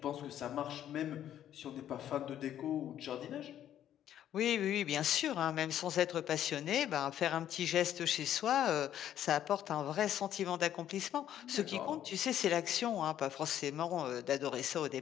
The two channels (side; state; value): right; quieter; 11.0 dB